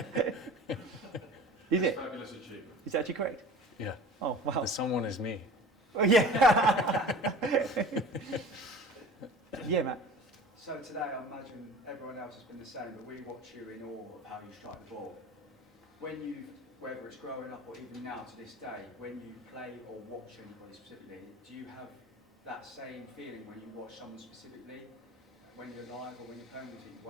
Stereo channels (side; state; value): both; normal; correlation 0.41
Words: Is it? Fabulous achievement. Is that actually correct? Yeah. Oh, wow. The someone is me. Oh, yeah. Yeah, Matt. So today, I imagine everyone else has been the same, but we watch you in awe of how you strike the ball. Whether it's growing up or even now to this day, when you play or watch anybody specifically, do you have that same feeling when you watch someone specifically, when you're live or when you're playing, you think,